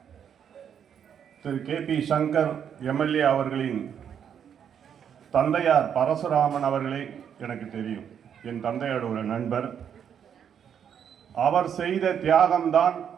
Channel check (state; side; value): quieter; left; 8.3 dB